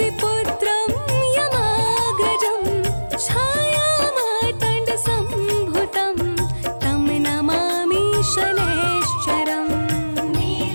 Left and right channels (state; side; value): inverted; both; correlation -1.00